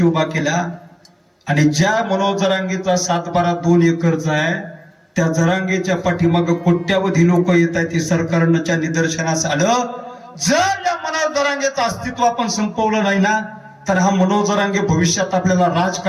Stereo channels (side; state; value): both; identical; correlation 1.00